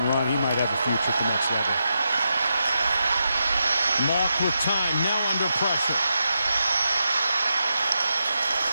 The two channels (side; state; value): both; inverted; correlation -0.86